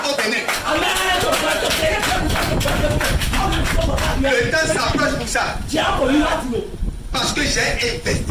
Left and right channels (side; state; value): both; identical; correlation 1.00